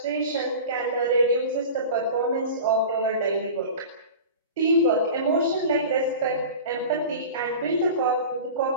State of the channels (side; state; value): both; inverted; correlation -0.35